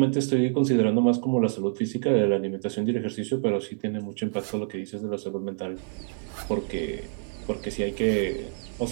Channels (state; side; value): silent; left; 55 dB below the other